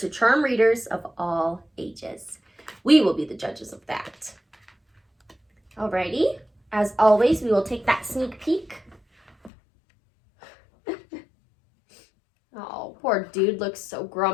charm readers of all ages. We will be the judges of that. Alrighty, as always, we will take that sneak peek. Oh, poor dude looks so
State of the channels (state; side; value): drops out; right; at 9.5 s